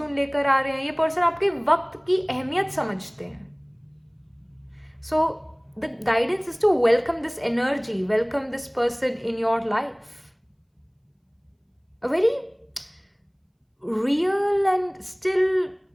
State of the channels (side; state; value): both; identical; correlation 1.00